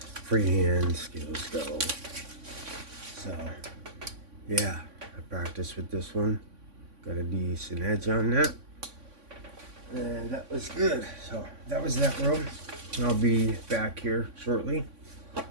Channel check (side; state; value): left; late; 3.5 ms